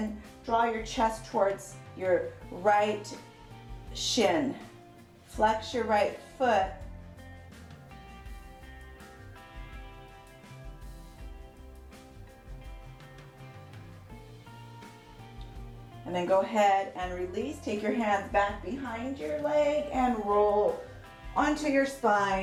draw your chest towards your right shin. Flex your right foot. And then go ahead and release. Take your hands back behind your leg and roll onto your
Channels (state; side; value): identical; both; correlation 1.00